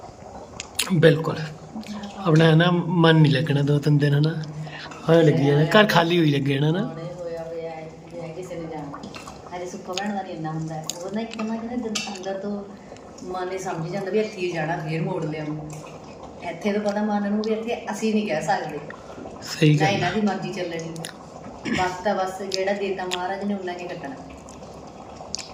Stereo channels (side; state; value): both; identical; correlation 1.00